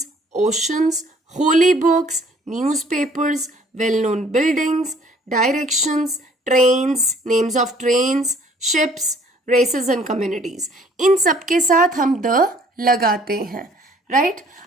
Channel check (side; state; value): both; normal; correlation 0.57